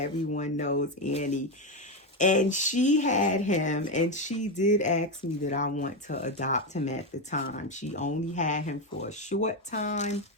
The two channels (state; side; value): normal; both; correlation 0.10